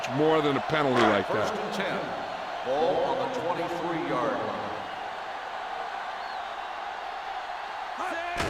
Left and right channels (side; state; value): both; identical; correlation 1.00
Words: more than a penalty like First that. and 10. Ball on the 23-yard line.